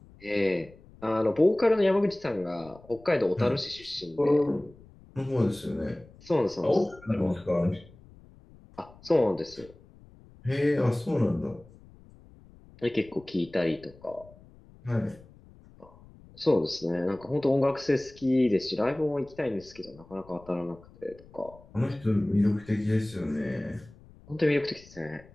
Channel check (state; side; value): noise; left; rumble, 23 dB below the sound